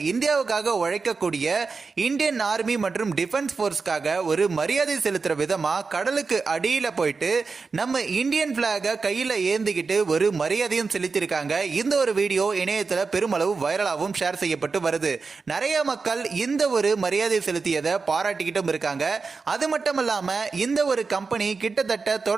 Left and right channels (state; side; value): quieter; left; 4.6 dB